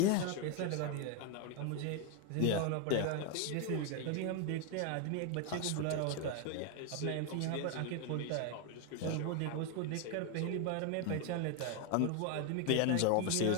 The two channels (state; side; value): different; both; correlation 0.01